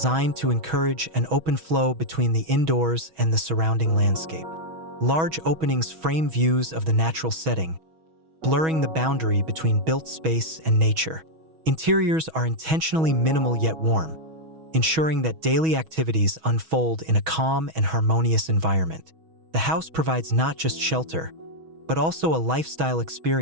to encourage an open flow between the indoors and the surrounding landscape. Large openings frame views of the natural setting, blurring the boundary between built space and nature. Interiors are intentionally minimal yet warm, ensuring that daily activities unfold in a calm and harmonious environment. The house provides not just shelter, but also a lifestyle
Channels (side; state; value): left; late; 6.2 ms